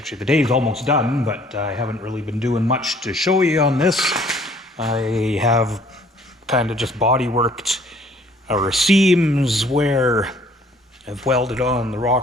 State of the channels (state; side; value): normal; both; correlation 0.58